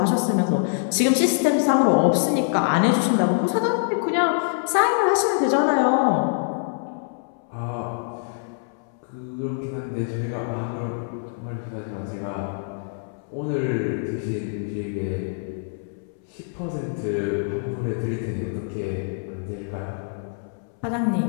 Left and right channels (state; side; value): silent; right; 62 dB below the other